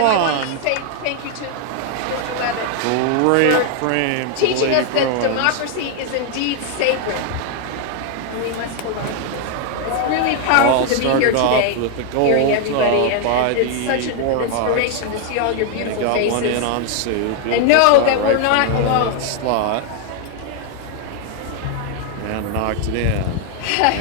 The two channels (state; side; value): different; both; correlation 0.00